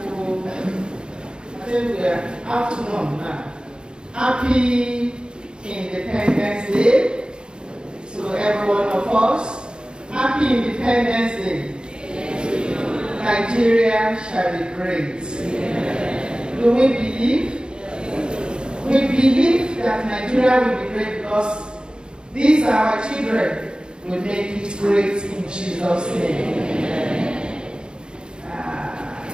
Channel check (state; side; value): late; left; 0.049 ms